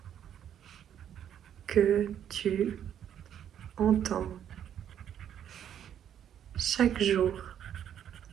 que tu entends chaque jour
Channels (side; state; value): left; quieter; 9.7 dB